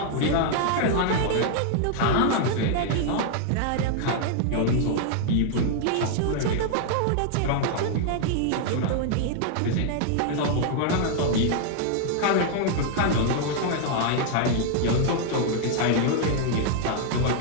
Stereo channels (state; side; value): different; both; correlation 0.00